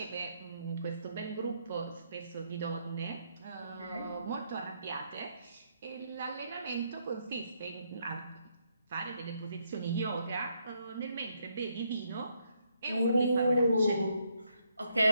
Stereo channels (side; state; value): both; inverted; correlation -0.75